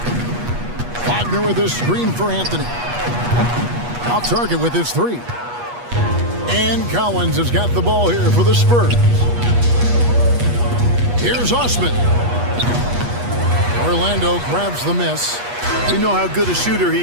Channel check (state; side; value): late; left; 8.3 ms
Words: Wagner with his screen for Anthony. Off target with his 3. And Collins has got the ball here for the Spurs. Here's Osman. Orlando grabs the miss. We know how good a shooter